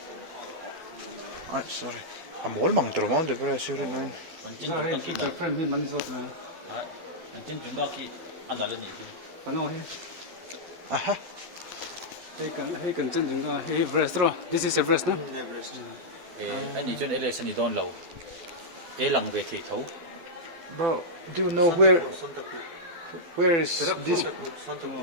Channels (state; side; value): late; left; 12 ms